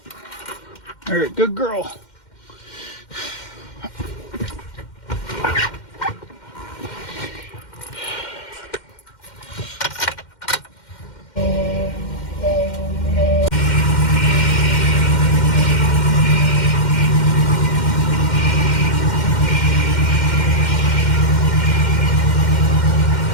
All right, good girl.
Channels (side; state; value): right; late; 2.1 ms